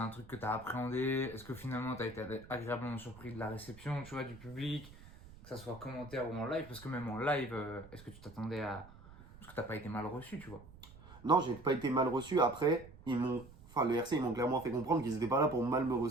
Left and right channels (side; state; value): right; noise; rumble, 19 dB below the sound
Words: truc que t'as appréhendé? Est-ce que finalement t'as été agréablement surpris de la réception, tu vois, du public? Que ça soit commentaire ou en live? Parce que même en live, est-ce que tu t'attendais à. Parce que t'as pas été mal reçu, tu vois. Non, j'ai pas été mal reçu. Après, enfin, le RC, ils m'ont clairement fait comprendre qu'ils étaient pas là pour mal me